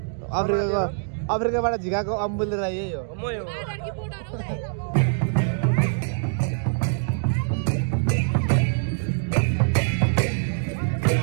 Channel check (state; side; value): silent; left; digital silence